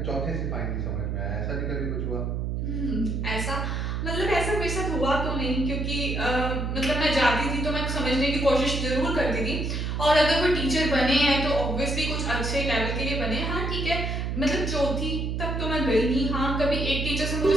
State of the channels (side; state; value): right; noise; hum, 2 dB below the sound